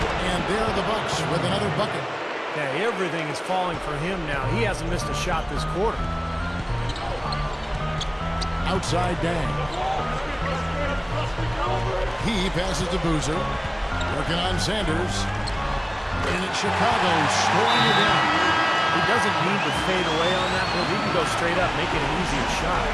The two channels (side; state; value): both; identical; correlation 1.00